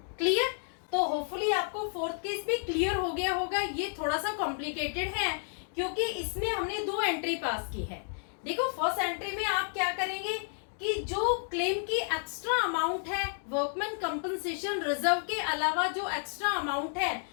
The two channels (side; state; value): right; silent; 57 dB below the other